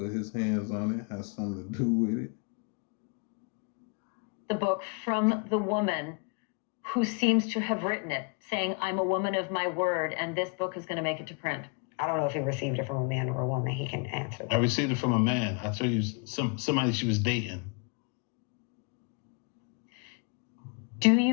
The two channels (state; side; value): quieter; right; 34.9 dB